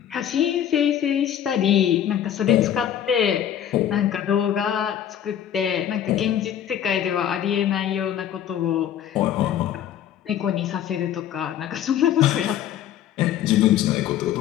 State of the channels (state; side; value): quieter; right; 10.3 dB